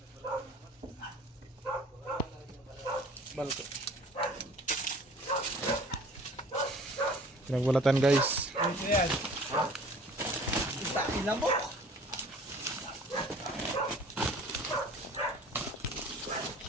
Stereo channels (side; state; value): both; normal; correlation 0.48